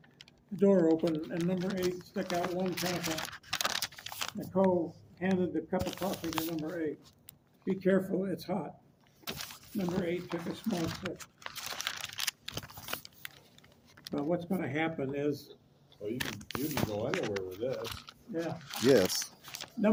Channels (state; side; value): identical; both; correlation 1.00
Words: The door opened and number 8 stuck out one chemical. Nicole handed the cup of coffee to number 8. Be careful, it's hot. Number 8 took a small sip. Well, what's going to happen is, Well, you can go anywhere with this. yeah, Yes.